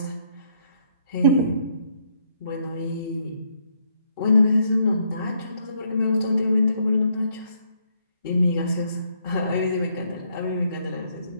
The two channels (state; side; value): inverted; both; correlation -0.71